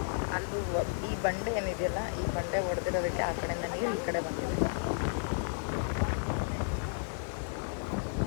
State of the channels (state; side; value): silent; right; 56 dB below the other